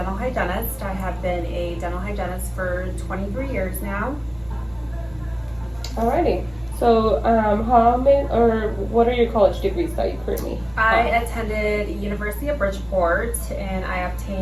hygienist. I have been a dental hygienist for 23 years now. Alrighty. So, how many, or what are your college degrees that you currently I have? attended University of Bridgeport and I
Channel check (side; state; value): right; noise; rumble, 25 dB below the sound